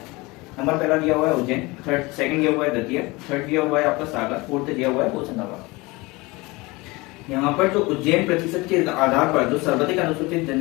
नंबर पहला दिया हुआ है उज्जैन, सेकंड दिया हुआ है दतिया, थर्ड दिया हुआ है आपका सागर, फोर्थ दिया हुआ है होशंगाबाद। यहाँ पर जो उज्जैन प्रतिशत के आधार पर जो सर्वाधिक अनुसूचित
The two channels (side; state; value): right; quieter; 23.4 dB